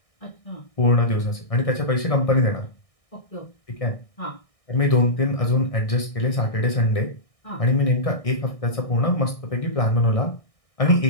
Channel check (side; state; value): right; late; 1.6 ms